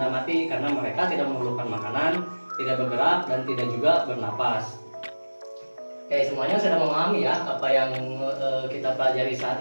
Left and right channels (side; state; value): both; inverted; correlation -1.00